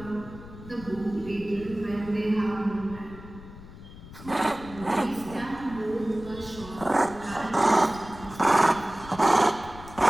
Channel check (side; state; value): left; noise; rumble, 16 dB below the sound